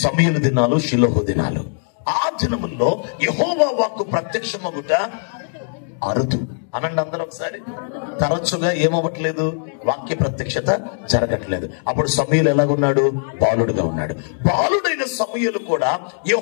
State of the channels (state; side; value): silent; right; digital silence